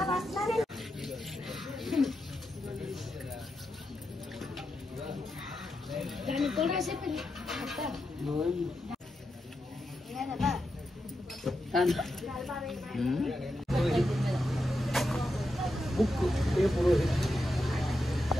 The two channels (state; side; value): normal; both; correlation 0.87